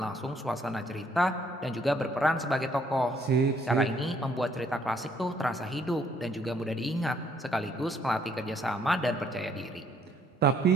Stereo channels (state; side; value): normal; both; correlation 0.66